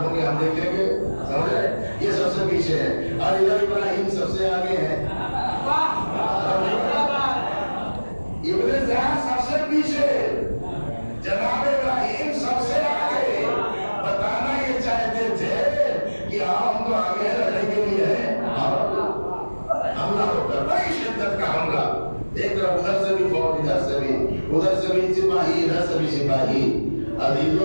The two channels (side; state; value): both; inverted; correlation -1.00